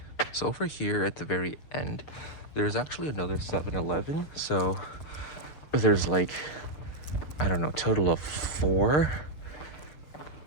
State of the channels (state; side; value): late; right; 6.8 ms